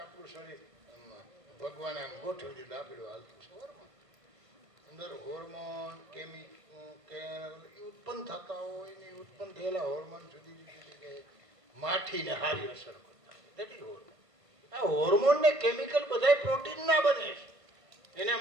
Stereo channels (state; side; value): late; left; 1.5 ms